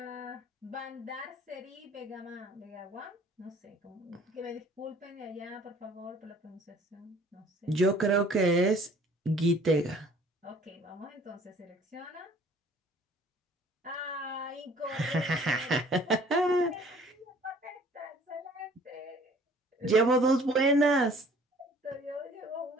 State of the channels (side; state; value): both; normal; correlation 0.54